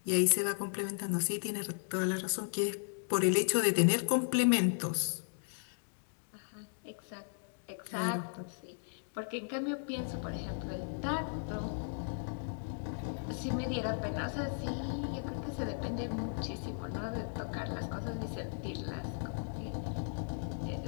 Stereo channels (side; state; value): right; silent; digital silence